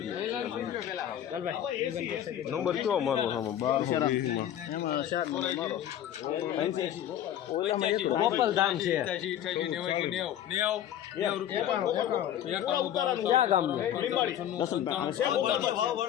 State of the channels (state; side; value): quieter; right; 11.0 dB